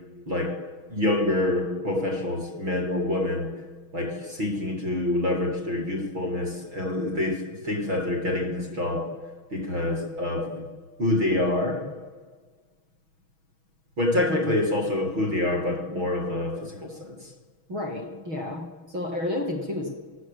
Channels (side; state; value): left; late; 6.2 ms